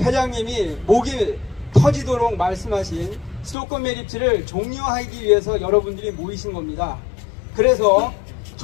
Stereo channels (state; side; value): drops out; right; at 3.6 s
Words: 회장님이 목이 터지도록 말씀하신 수도권 매립지를 종료하기 위해서 여러분들이 모이신 겁니다. 그래서